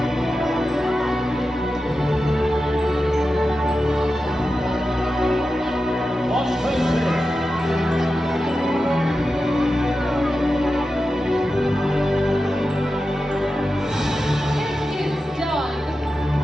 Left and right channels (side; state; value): both; normal; correlation 0.92